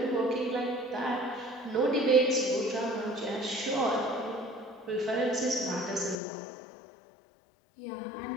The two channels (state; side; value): drops out; right; at 6.2 s